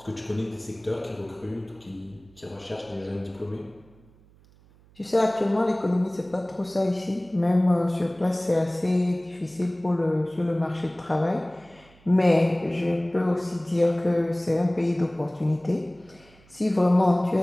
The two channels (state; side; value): noise; right; hum, 28 dB below the sound